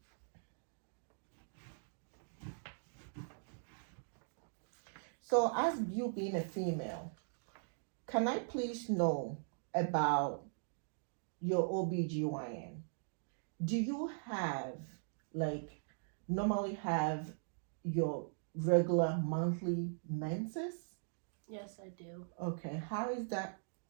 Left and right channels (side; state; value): left; silent; digital silence